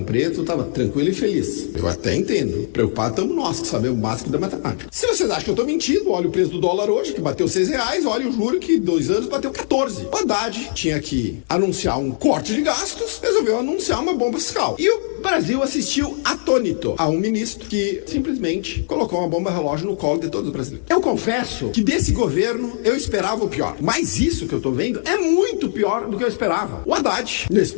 Preto, estava tranquila e feliz. Eu até entendo. Preocupado estamos nós, que sabemos o básico da matemática. Se vocês acham que eu estou mentindo, olha o preço do dólar hoje, que bateu R$6, olha o juro que 2 anos bateu 14. O Haddad tinha que anunciar um corte de gastos, resolveu anunciar uma bomba fiscal. E o Brasil assistiu atônito a um ministro que simplesmente colocou uma bomba relógio no colo de todos os brasileiros. Eu confesso que desse governo eu esperava o pior. Mas isso que eu tô vendo é muito pior do que eu esperava. O Haddad, nesse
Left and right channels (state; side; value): silent; right; digital silence